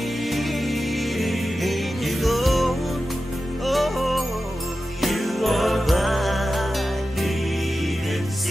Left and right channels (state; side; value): normal; both; correlation 0.93